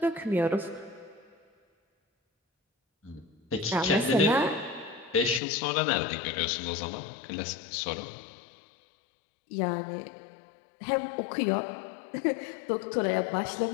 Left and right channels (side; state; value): right; drops out; at 5.4 s